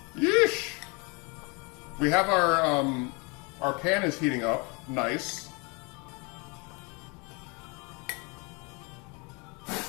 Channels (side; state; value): right; quieter; 30.3 dB